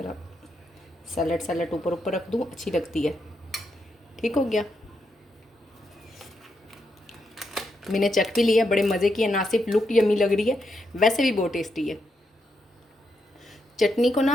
सैलड ऊपर ऊपर रख दूँ, अच्छी लगती है। ठीक हो गया। मैंने चख भी लिया, बड़े मज़े की है, ना सिर्फ लुक यम्मी लग रही है वैसे भी बहुत टेस्टी है। चटनी को ना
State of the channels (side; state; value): both; normal; correlation 0.82